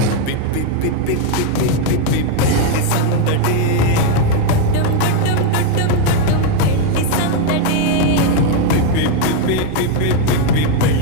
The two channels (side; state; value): both; different; correlation 0.01